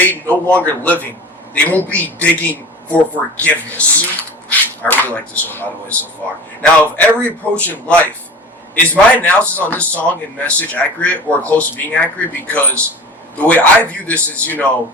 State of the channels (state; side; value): normal; both; correlation 0.37